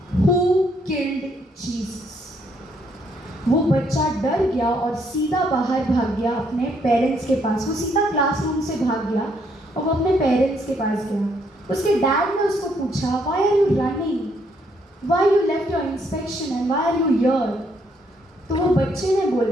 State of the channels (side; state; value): both; normal; correlation 0.71